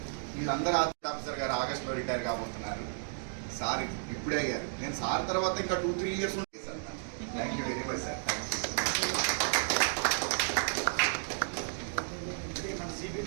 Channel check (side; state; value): left; silent; digital silence